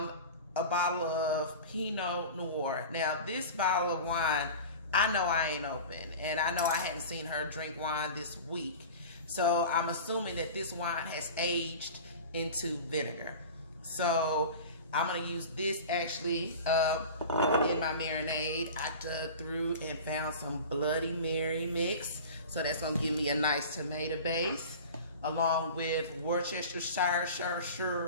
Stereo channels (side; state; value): both; inverted; correlation -0.35